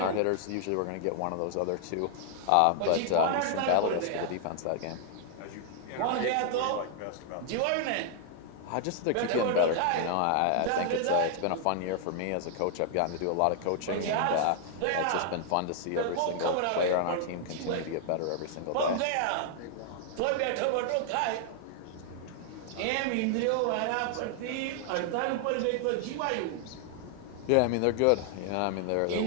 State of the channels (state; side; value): different; both; correlation 0.00